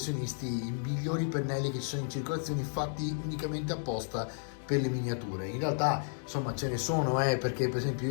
i migliori pennelli che ci sono in circolazione, fatti unicamente apposta per le miniature. In realtà insomma ce ne sono, perché per esempio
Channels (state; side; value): silent; right; 56 dB below the other